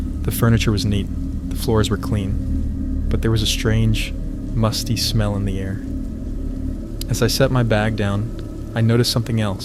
The furniture was neat, the floors were clean, but there was a strange, musty smell in the air. As I set my bag down, I noticed something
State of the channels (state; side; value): identical; both; correlation 1.00